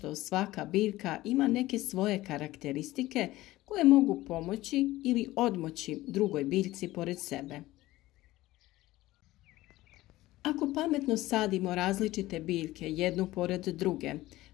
svaka biljka ima neke svoje karakteristike koje mogu pomoći ili odmoći drugoj biljci pored sebe. Ako pametno sadimo različite biljke jednu pored druge,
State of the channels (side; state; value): right; quieter; 17.2 dB